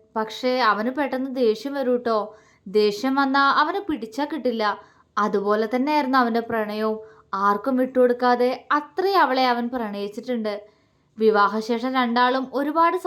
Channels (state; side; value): identical; both; correlation 1.00